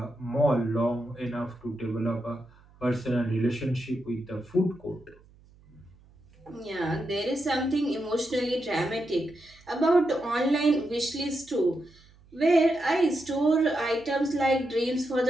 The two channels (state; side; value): noise; right; hum, 27 dB below the sound